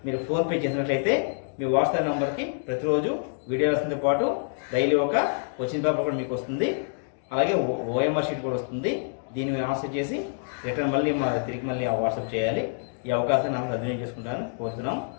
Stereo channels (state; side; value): silent; right; digital silence